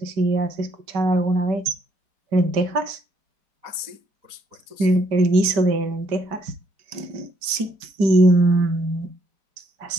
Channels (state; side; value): late; left; 5.1 ms